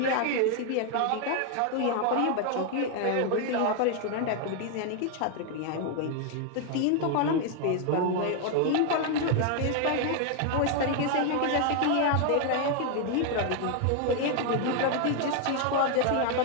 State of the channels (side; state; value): both; different; correlation 0.00